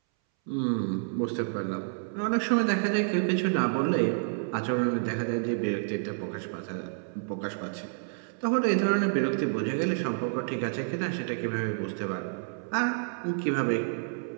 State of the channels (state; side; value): silent; left; 58 dB below the other